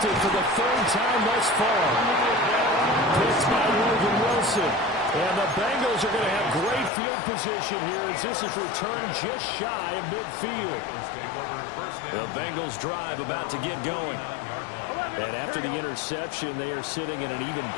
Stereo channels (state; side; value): drops out; right; at 6.9 s